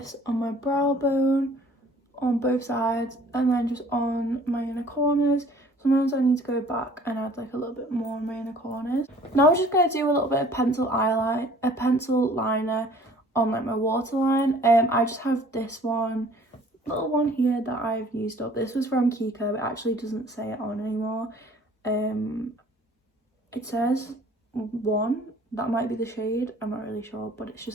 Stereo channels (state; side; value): normal; both; correlation 0.53